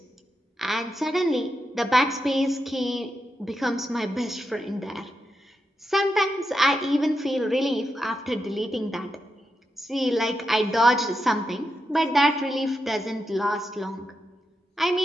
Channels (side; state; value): both; normal; correlation 0.86